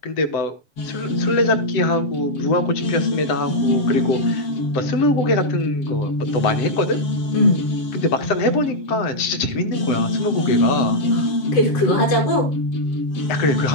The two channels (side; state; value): right; late; 7.7 ms